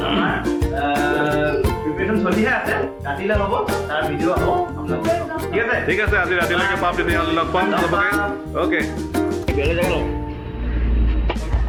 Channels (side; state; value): both; identical; correlation 1.00